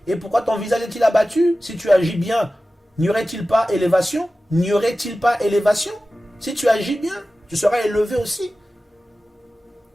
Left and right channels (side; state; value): both; normal; correlation 0.95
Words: Et pourquoi ton visage est-il abattu? Si tu agis bien, n'y aurait-il pas élévation? N'y aurait-il pas élévation? Si tu agis bien, tu seras élevé aussi.